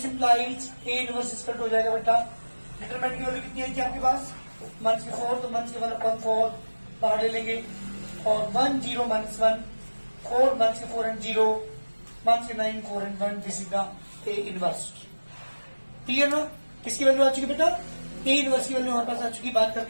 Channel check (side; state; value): both; inverted; correlation -1.00